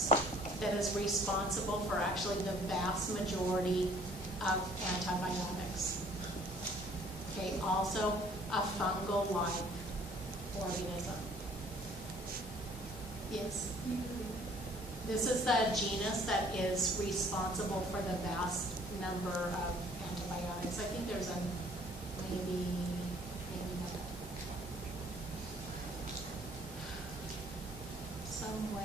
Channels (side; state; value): both; normal; correlation 0.57